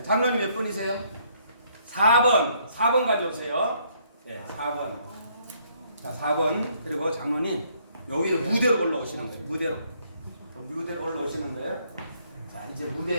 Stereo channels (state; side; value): inverted; both; correlation -0.68